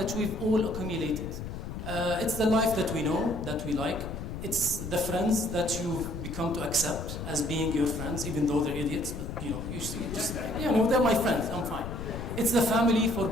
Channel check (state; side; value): noise; left; rumble, 7 dB below the sound